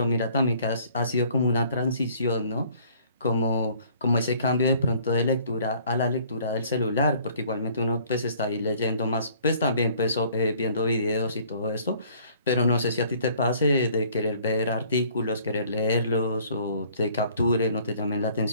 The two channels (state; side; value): inverted; both; correlation -0.57